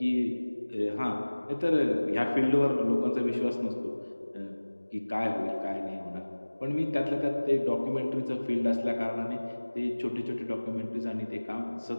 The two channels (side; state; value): both; inverted; correlation -1.00